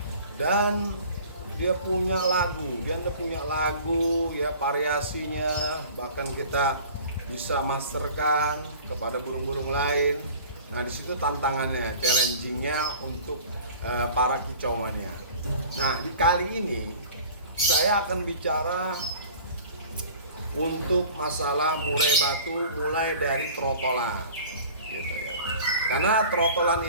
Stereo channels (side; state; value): both; inverted; correlation -0.44